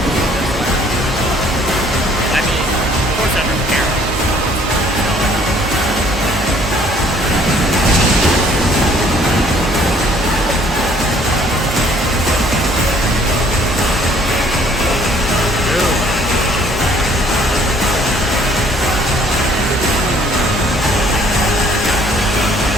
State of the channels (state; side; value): normal; both; correlation 0.60